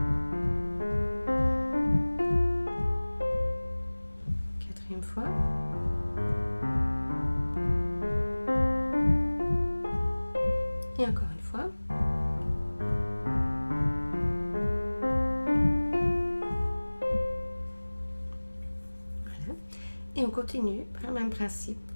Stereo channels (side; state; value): both; inverted; correlation -1.00